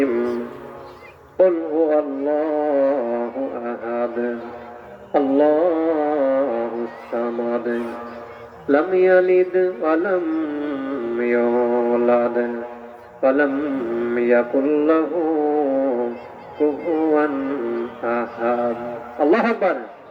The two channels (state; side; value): identical; both; correlation 1.00